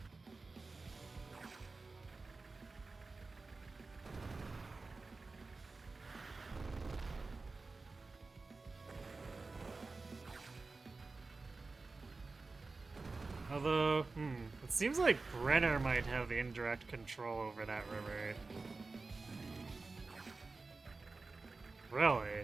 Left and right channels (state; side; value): quieter; left; 3.8 dB